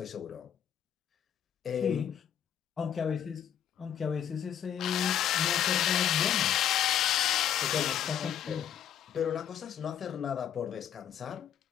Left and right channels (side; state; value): right; quieter; 9.7 dB